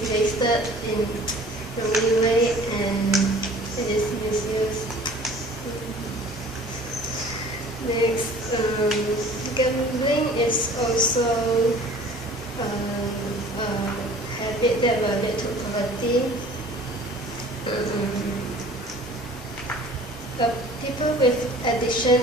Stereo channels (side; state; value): both; normal; correlation 0.48